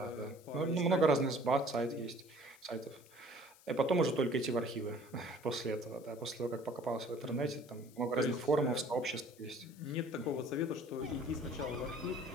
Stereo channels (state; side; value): noise; left; hiss, 25 dB below the sound